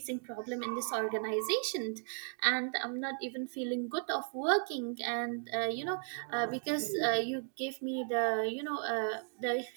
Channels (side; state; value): left; silent; 54 dB below the other